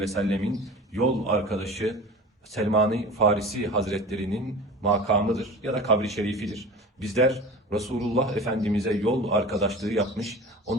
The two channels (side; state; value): both; normal; correlation 0.36